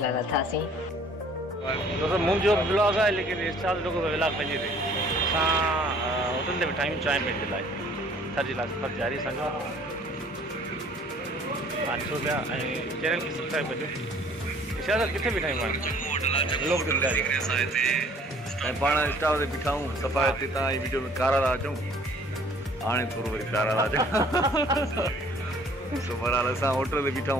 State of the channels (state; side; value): normal; both; correlation 0.55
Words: लाइ लथासीं। दोस्तों मुंहिंजो ब्लॉग आहे लेकिन irshad जो व्लॉग पंहिंजे ते असां होटल ते वेठा आहियूं चांहि पीअण जे लाइ थर जे लाइ सफ़र जारी असांजो ॾिसो पिया ऐं चैनल खे सब्सक्राइब कजो। irshad किथे बीठा आहियूं व्लॉग ते ॿुधाइजो ऐं पाण स्टाफ ते बीठा आहियूं सफ़ा हिते तव्हां जी वीडियो में कारा था अचूं हाणे थोरो वरी प्यारा था अचूं सो बहरहाल असां होटल ते बीठा